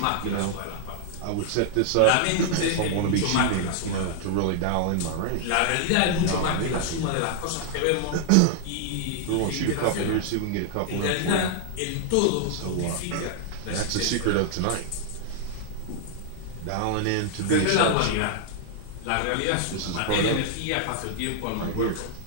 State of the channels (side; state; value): both; different; correlation -0.01